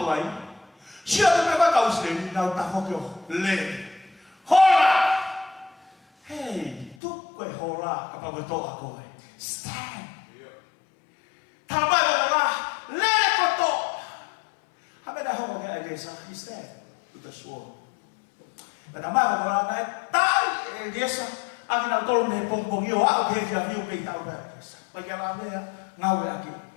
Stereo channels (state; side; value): drops out; right; at 7.0 s